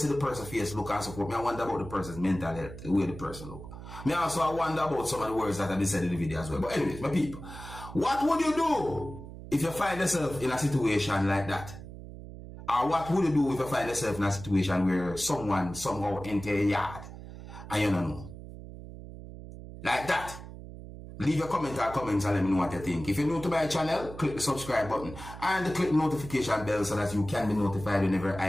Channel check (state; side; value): noise; right; hum, 13 dB below the sound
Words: the person's face look and support, I wonder about the person's mental health, the way the person look. Me also I wonder about some of the words that have been said in the video as well. But anyways, my people, what would you do if you find yourself in a situation like that? Or what would you do if you find yourself in a situation where someone somehow enter your yard and you don't know? Like that. Leave your comment or comments and let me know what you think. If you're new to my channel, click the subscribe button and click the notification bell so that you can be notified whenever